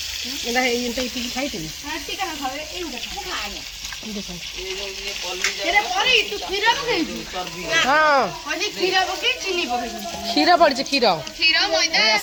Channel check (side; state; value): both; identical; correlation 1.00